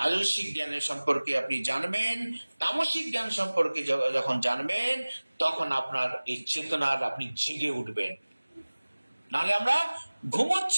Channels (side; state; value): both; inverted; correlation -1.00